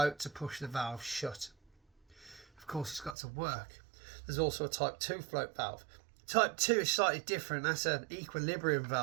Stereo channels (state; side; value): drops out; left; at 3.2 s